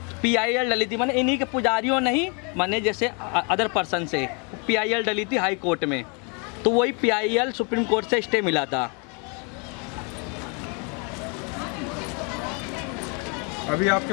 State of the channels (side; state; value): right; quieter; 34.7 dB